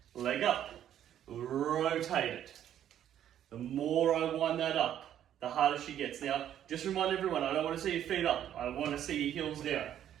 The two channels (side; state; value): left; quieter; 10.7 dB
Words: Leg up. Rotate it. The more I wind that up, the harder she gets. Now, just remind everyone, I don't want to see your feet up. I want to see your heels down.